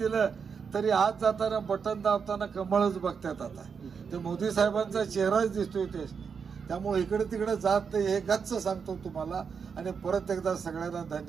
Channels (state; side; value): quieter; left; 6.1 dB